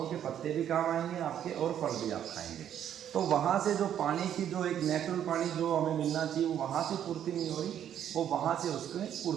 के पत्ते भी काम आएंगे आपके, और फल भी आप खाएंगे। तो वहाँ से जो पानी की जो एक नेचुरल पानी जो हमें मिलना चाहिए वो वहाँ से पूर्ति नहीं हो रही, वो वहाँ से उसमें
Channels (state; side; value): quieter; left; 10.0 dB